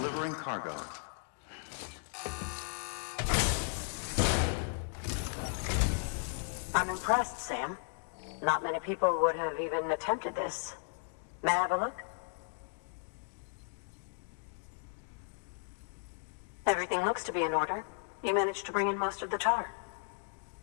cargo. I'm impressed, Sam. Not many people would have even attempted this. May I have a look? Everything looks to be in order. You managed to bring in most of the tar.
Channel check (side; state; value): right; silent; 54 dB below the other